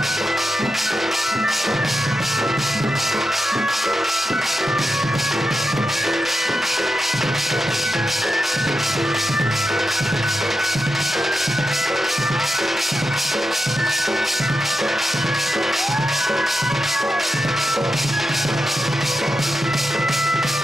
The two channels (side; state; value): both; normal; correlation 0.88